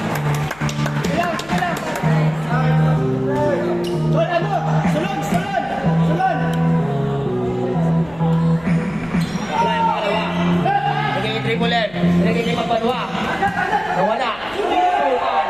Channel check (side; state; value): left; noise; hum, 22 dB below the sound